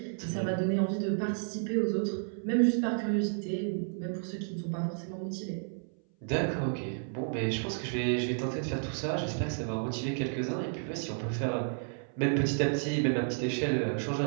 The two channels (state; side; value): silent; left; 57 dB below the other